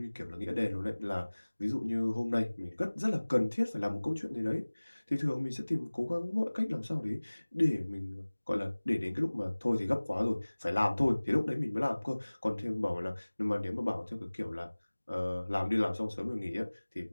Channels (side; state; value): both; inverted; correlation -1.00